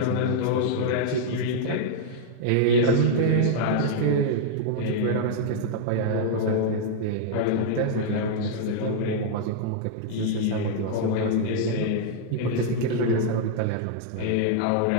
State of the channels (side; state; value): both; different; correlation -0.01